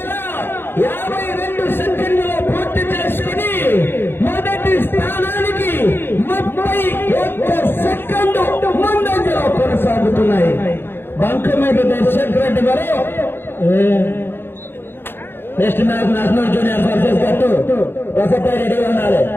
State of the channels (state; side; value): late; right; 0.10 ms